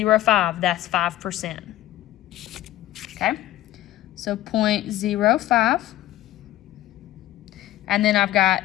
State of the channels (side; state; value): right; quieter; 14.4 dB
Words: that's 5%. Okay? So 0.05. And then I've